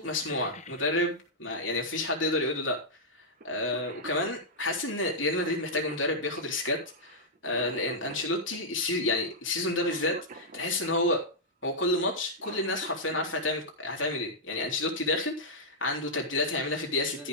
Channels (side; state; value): both; normal; correlation -0.08